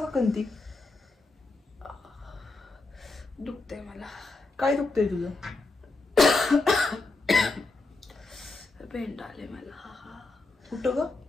का कंती? दुखते मला. काय दुखतंय तुझं? पेंट आले मला. कुठं ग?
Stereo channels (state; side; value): quieter; right; 3.4 dB